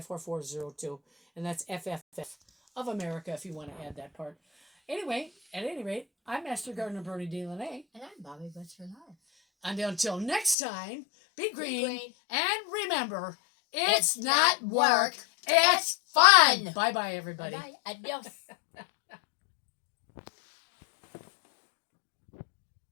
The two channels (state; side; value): drops out; right; at 10.6 s